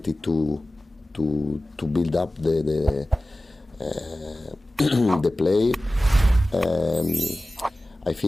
to build up the the play. I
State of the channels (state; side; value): normal; both; correlation 0.96